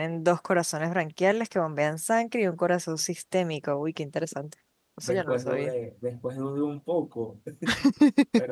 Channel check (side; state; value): both; identical; correlation 1.00